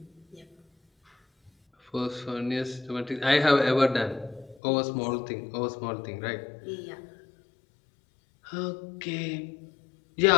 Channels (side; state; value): right; drops out; at 4.6 s